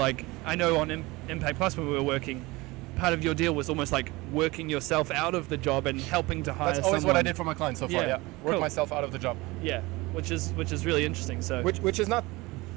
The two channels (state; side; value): quieter; left; 22.1 dB